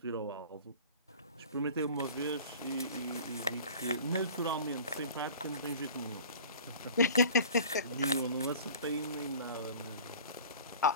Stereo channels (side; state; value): both; inverted; correlation -0.43